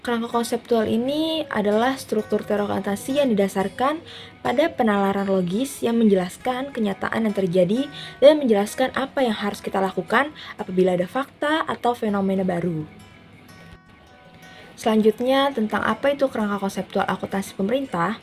kerangka konseptual ini adalah struktur teori akuntansi yang didasarkan pada penalaran logis yang menjelaskan kenyataan yang terjadi dan menjelaskan apa yang harus kita lakukan apabila ada fakta atau fenomena baru. Selanjutnya, tentang apa itu kerangka konseptual akuntansi pemerintah,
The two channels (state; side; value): identical; both; correlation 1.00